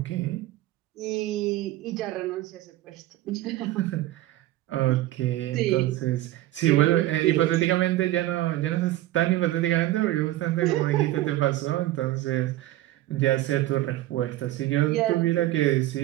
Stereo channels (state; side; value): quieter; left; 15.5 dB